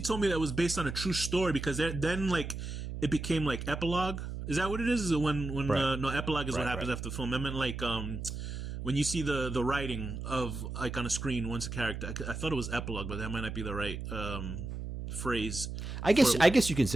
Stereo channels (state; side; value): noise; right; hum, 6 dB below the sound